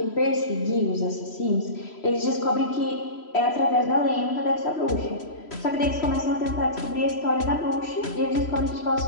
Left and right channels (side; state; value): right; late; 3.0 ms